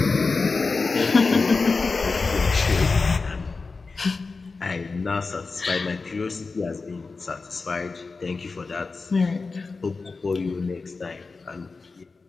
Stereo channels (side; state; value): right; quieter; 4.2 dB